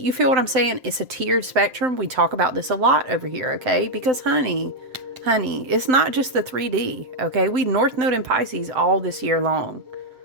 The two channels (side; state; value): left; late; 7.7 ms